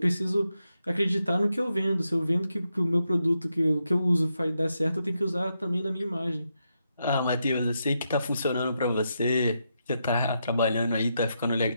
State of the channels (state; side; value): inverted; both; correlation -0.83